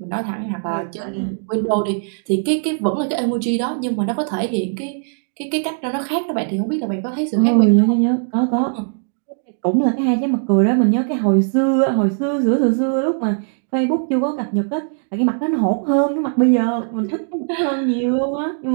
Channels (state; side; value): silent; left; digital silence